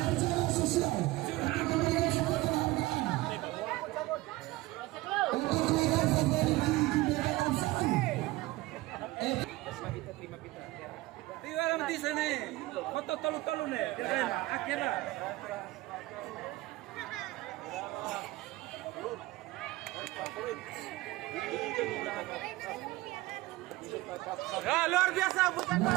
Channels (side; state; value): left; quieter; 19.0 dB